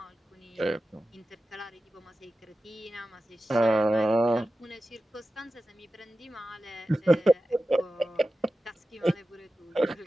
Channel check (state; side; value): normal; both; correlation 0.94